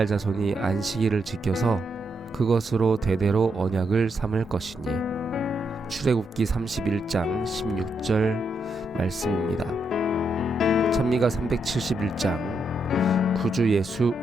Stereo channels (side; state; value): both; normal; correlation 0.80